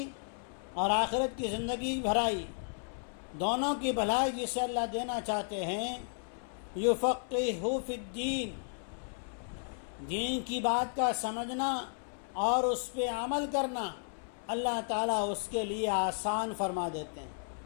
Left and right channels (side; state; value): right; silent; 55 dB below the other